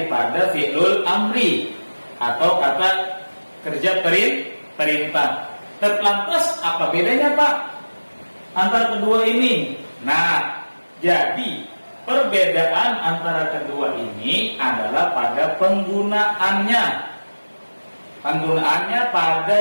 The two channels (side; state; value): both; inverted; correlation -1.00